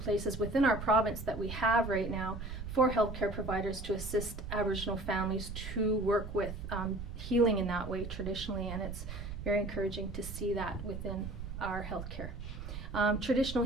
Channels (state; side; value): noise; right; rumble, 8 dB below the sound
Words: places within our province that we have right now for healthcare providers to assist Aboriginal families to work with healing in that way traditionally, and it's very encouraging to see that within our healthcare. Traditional